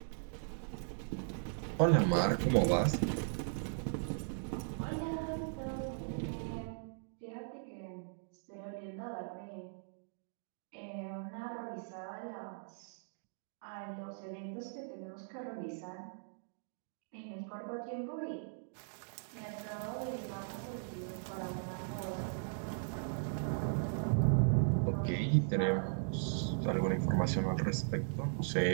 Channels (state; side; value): silent; left; digital silence